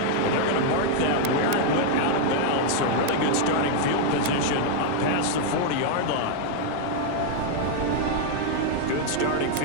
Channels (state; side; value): different; both; correlation 0.00